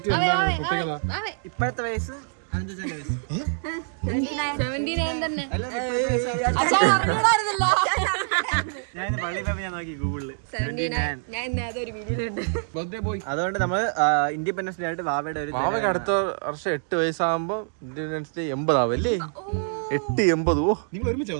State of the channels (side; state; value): left; silent; digital silence